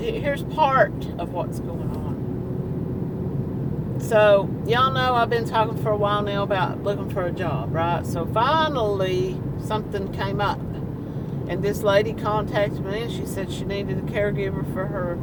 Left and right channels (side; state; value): both; identical; correlation 1.00